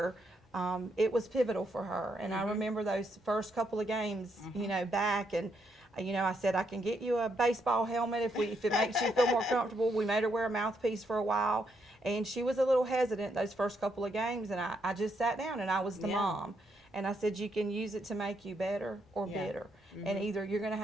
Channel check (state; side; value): normal; both; correlation 0.77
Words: it was pivotal for her. And I remember those first couple of games, back, and I said, I can get you a baseball helmet if it makes you feel more comfortable. We made her wear a mouthpiece for a while, and she was a little hesitant those first couple of games, and I just sat down, and I was the mom. And I said, you can use it to make you better or bitter. And either you're going to